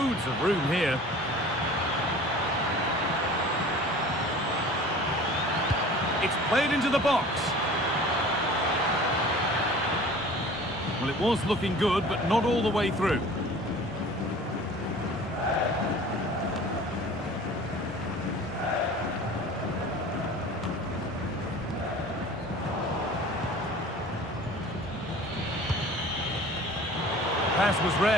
of room here. It's played into the box. Well, it was looking good, but not all the way through. Pass was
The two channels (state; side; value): normal; both; correlation 0.43